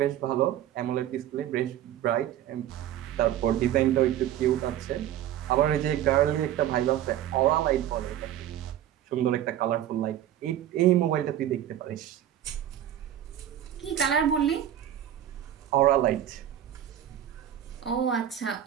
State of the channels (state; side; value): quieter; left; 11.4 dB